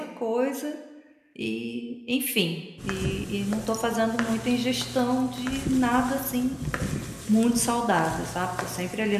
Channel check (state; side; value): identical; both; correlation 1.00